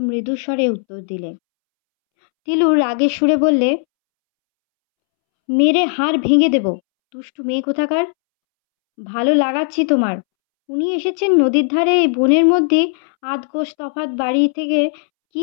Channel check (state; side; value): silent; right; 68 dB below the other